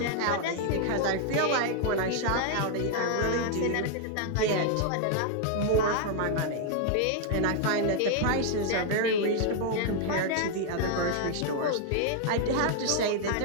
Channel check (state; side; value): different; both; correlation 0.00